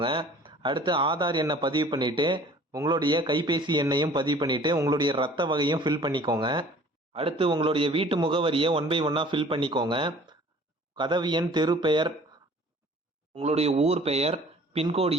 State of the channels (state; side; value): normal; both; correlation 0.50